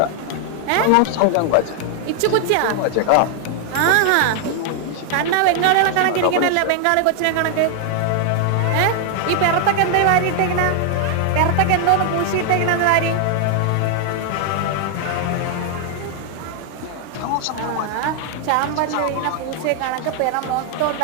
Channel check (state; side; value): different; both; correlation 0.00